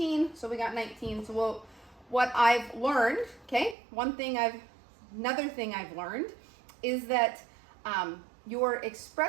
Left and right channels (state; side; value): drops out; left; at 3.8 s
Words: so we got 19. So what I've learned, okay, another thing I've learned is that your